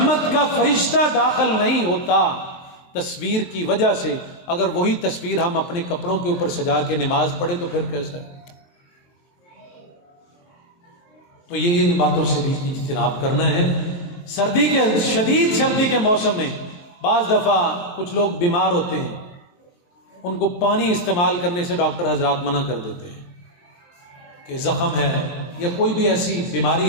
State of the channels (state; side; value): late; right; 23 ms